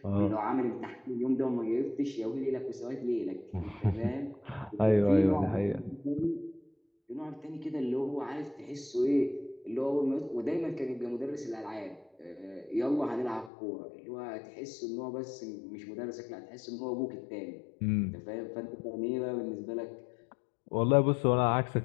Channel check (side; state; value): right; drops out; at 13.5 s